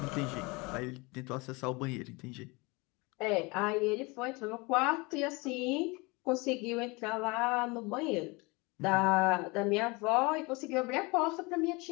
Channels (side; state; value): right; quieter; 26.3 dB